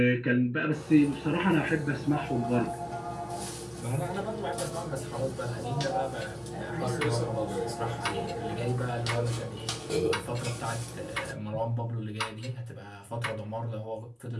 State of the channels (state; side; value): identical; both; correlation 1.00